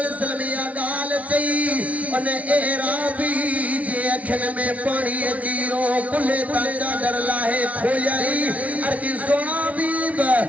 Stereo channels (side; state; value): left; late; 0.068 ms